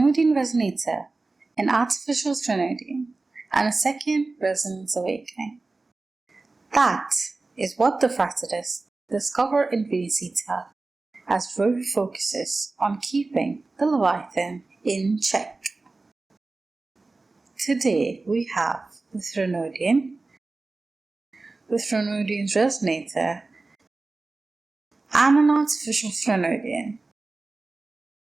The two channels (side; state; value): left; quieter; 3.5 dB